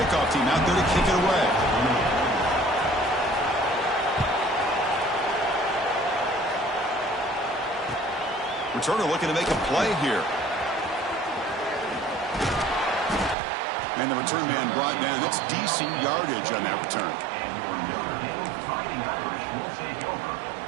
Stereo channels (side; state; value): left; drops out; at 13.4 s